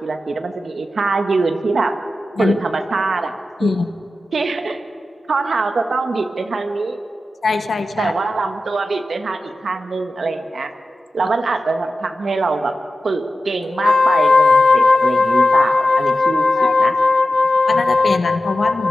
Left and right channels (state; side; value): normal; both; correlation 0.93